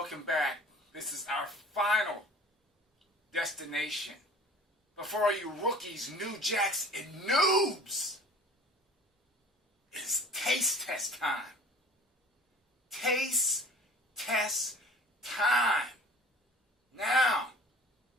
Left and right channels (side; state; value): both; normal; correlation 0.46